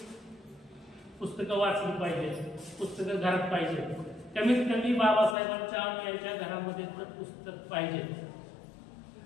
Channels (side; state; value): right; drops out; at 5.4 s